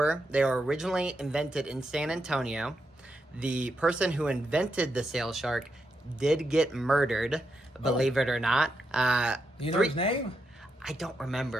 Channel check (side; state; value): both; normal; correlation 0.84